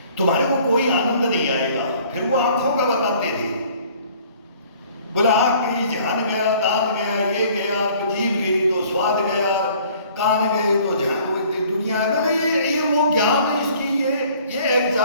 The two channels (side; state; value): both; inverted; correlation -0.55